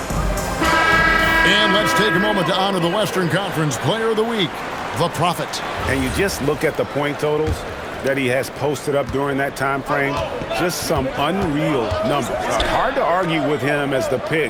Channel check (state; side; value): identical; both; correlation 1.00